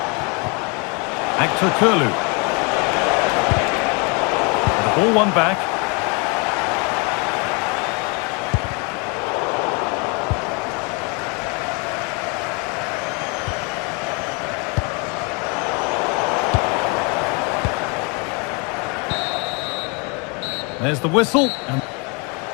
Actor Kurlu. The ball won back. There's the whistle.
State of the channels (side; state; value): right; quieter; 32.4 dB